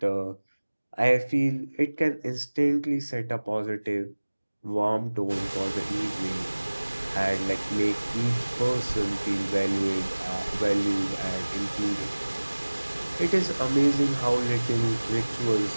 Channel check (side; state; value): both; inverted; correlation -1.00